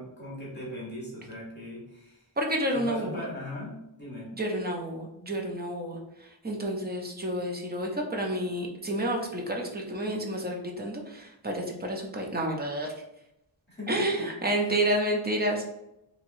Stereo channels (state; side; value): normal; both; correlation 0.01